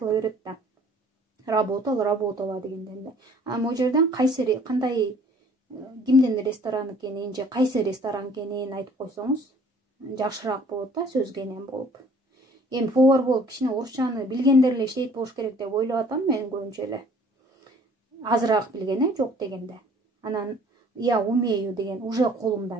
берет да. Работала дегенден эле. Могу жерден кандай кимдин ресторан экенин же кайсы ресторан экенин айтып койсоңуз жакшыраак болот да, сөзгенен болуп. Эми повар болуп кичине орусчаны билгендер эле иштейт болуш керек деп ойлоп атам мен көбүнчө эле. Азыраак билген, жок дегенде. Анан я умею деген уже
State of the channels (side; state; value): both; normal; correlation 0.54